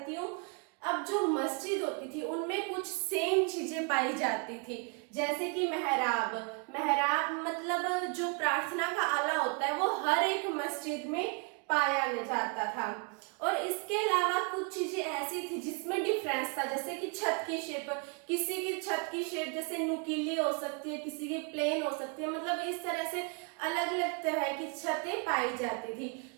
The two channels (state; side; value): quieter; left; 36.0 dB